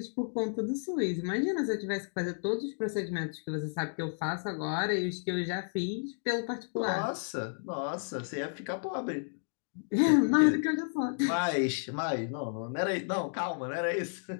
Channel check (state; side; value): silent; right; digital silence